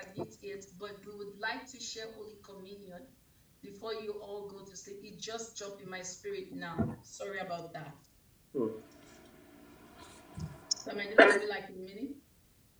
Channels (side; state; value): both; identical; correlation 1.00